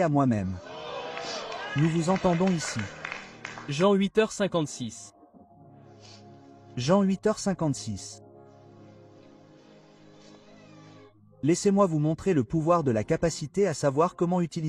à moi-même. Nous vous entendons ici. Jean 8h56. Jean 8h56. Laissez-moi vous montrer le pouvoir de la capacité à savoir comment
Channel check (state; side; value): identical; both; correlation 1.00